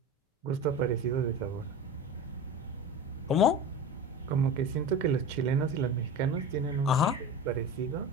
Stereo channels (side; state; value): both; normal; correlation 0.30